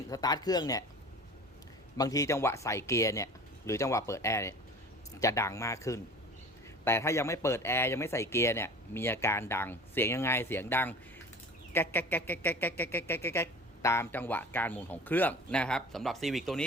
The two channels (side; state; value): both; normal; correlation 0.40